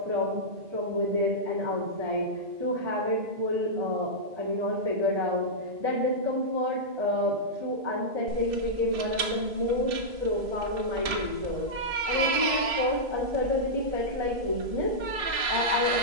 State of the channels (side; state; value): left; late; 2.6 ms